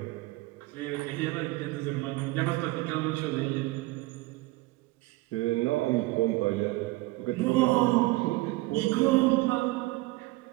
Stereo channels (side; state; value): left; quieter; 20.7 dB